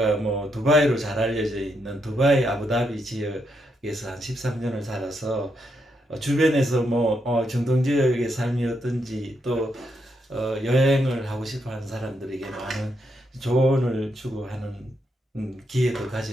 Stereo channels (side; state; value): both; normal; correlation 0.80